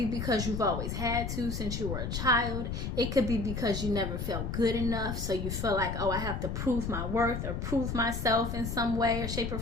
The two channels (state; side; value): noise; left; rumble, 3 dB below the sound